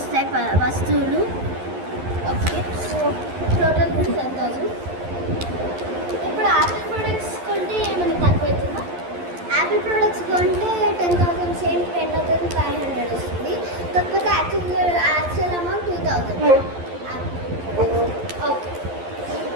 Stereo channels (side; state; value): left; late; 11 ms